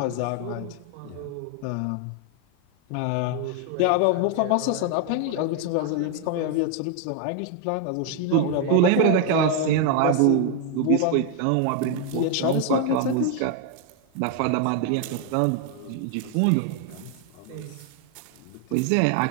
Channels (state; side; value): different; both; correlation 0.00